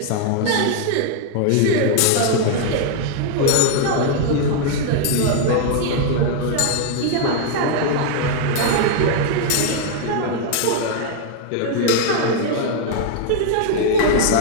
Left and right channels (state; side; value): different; both; correlation 0.00